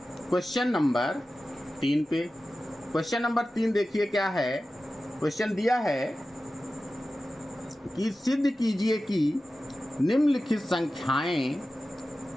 क्वेश्चन नंबर 3 पे। क्वेश्चन नंबर 3 देखिए क्या है। क्वेश्चन दिया है कि सिद्ध कीजिए कि निम्नलिखित संख्याएं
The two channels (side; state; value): both; normal; correlation 0.94